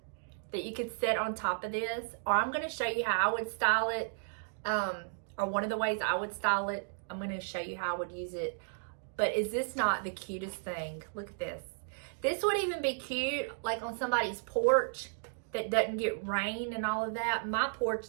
that you could set on top of this, or I'm going to show you how I would style it, or one of the ways I would style it. I'm going to show you how I would use it. But is this not the cutest thing? Look at this. This would even be cute like on somebody's porch that doesn't get rain and all of that. My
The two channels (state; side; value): silent; left; digital silence